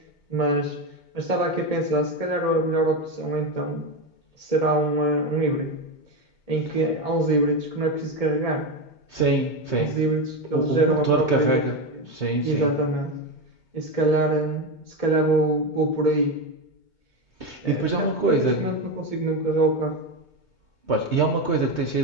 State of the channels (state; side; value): late; right; 2.2 ms